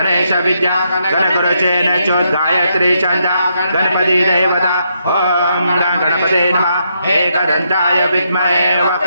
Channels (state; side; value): inverted; both; correlation -0.78